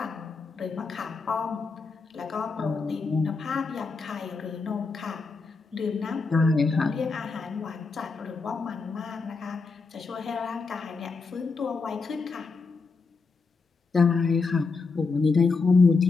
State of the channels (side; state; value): right; quieter; 4.3 dB